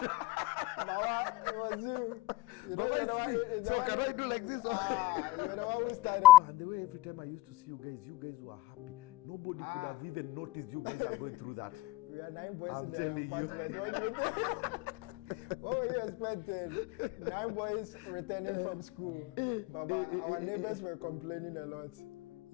Mama, it was you. So can I do like this? You're the one who started. And the way every time I used to see you guys were happy. Nobody could have even noticed you guys are going through that. We are 9 boys I'm in the telling apartment. What were you expecting? 9 boys returning from school. Baba, our neighbors were complaining a lot.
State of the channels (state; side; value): quieter; right; 17.7 dB